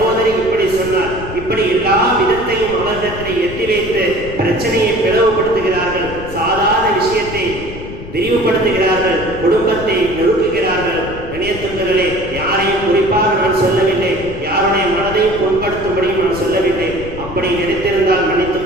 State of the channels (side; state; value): left; noise; rumble, 12 dB below the sound